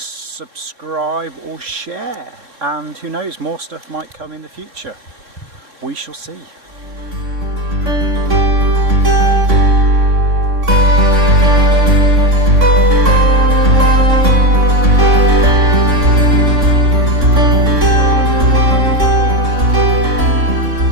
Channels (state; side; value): late; left; 3.6 ms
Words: or share, and who knows, more stuff might come in the future. We shall see.